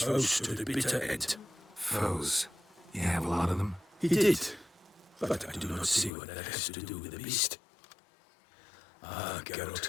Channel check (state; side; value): drops out; right; at 6.1 s